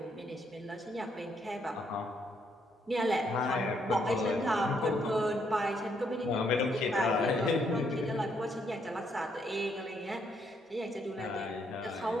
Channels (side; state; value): both; normal; correlation 0.73